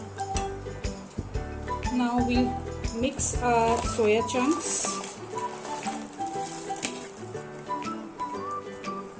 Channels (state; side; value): identical; both; correlation 1.00